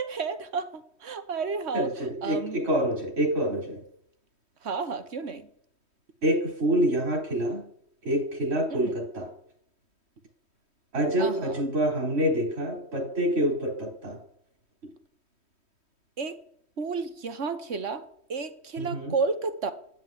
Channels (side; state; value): left; late; 3.1 ms